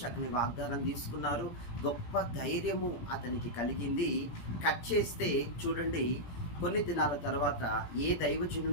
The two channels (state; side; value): late; right; 17 ms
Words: వాగ్దానం తీసుకున్నారు, గొప్ప ధైర్యము అతనికి కలిగింది. కట్ చేస్తే చూడండి, కొన్ని దినాల తర్వాత ఏ